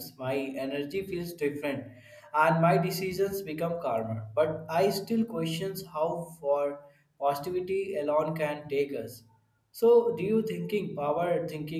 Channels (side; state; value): both; identical; correlation 1.00